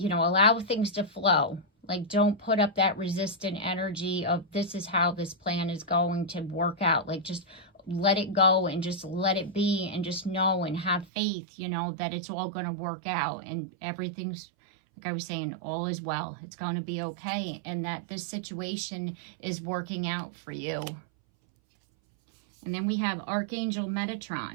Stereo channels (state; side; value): drops out; left; at 11.1 s